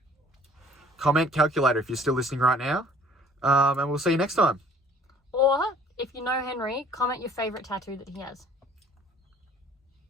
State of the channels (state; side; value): normal; both; correlation 0.55